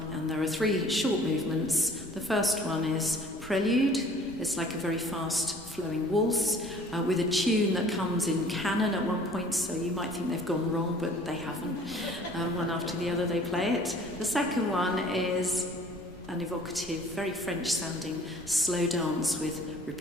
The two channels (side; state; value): right; noise; rumble, 20 dB below the sound